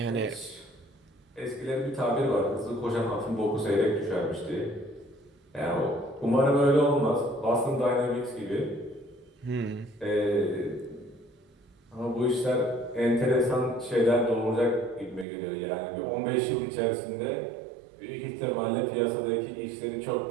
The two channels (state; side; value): drops out; left; at 15.2 s